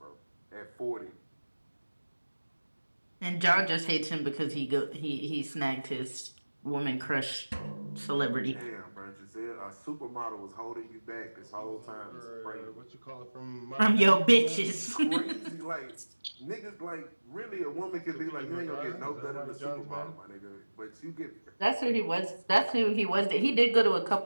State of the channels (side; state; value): both; inverted; correlation -1.00